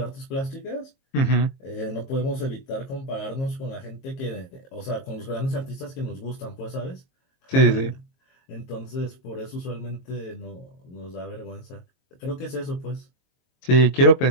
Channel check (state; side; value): late; right; 22 ms